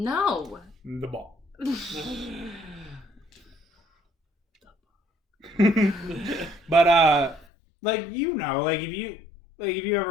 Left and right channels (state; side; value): drops out; right; at 7.5 s